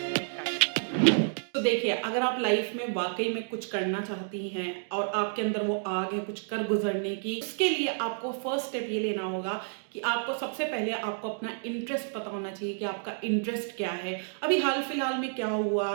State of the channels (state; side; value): silent; left; digital silence